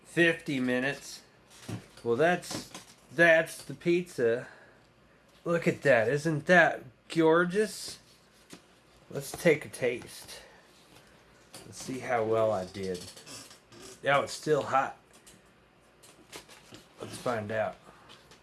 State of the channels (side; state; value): both; identical; correlation 1.00